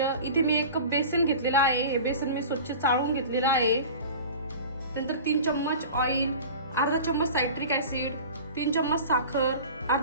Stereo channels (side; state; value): both; inverted; correlation -0.37